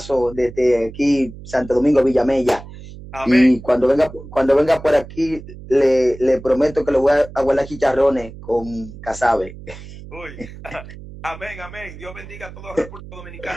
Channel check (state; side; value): noise; right; hum, 15 dB below the sound